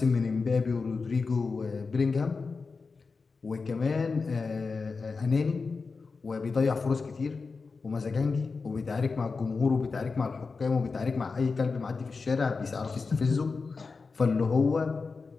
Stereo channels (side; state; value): right; quieter; 4.5 dB